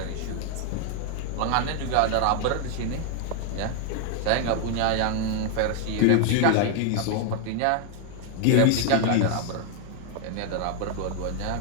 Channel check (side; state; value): both; different; correlation 0.00